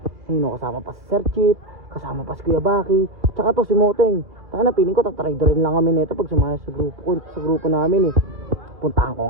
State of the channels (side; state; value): left; late; 2.5 ms